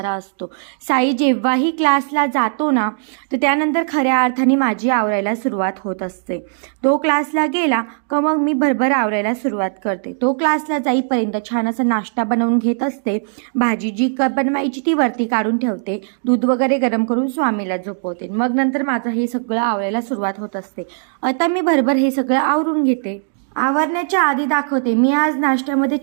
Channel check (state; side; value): silent; left; digital silence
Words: असतो. साई जेव्हाही क्लासला जातो ना तर त्यानंतर खऱ्या अर्थाने माझी आवरायला सुरुवात होत असते. तो क्लासला गेला का मग मी भरभर आवरायला सुरुवात करते. तो क्लासला जाईपर्यंत छान असा नाश्ता बनवून घेत असते. भाजी जी बनवायची ती वरती काढून ठेवते. दूध वगैरे गरम करून स्वामीला झोपवते. मग नंतर माझं हे सगळं आवरायला सुरुवात होत असते. आता मी भरभर हे सगळं आवरून घेते. आवरण्याच्या आधी दाखवते मी आज नाश्त्यामध्ये